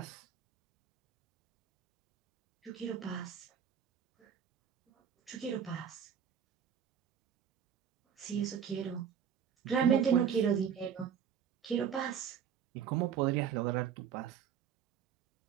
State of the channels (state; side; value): quieter; left; 8.1 dB